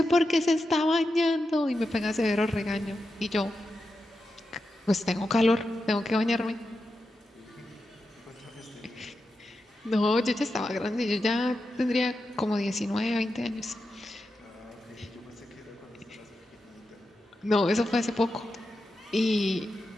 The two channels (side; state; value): both; normal; correlation 0.89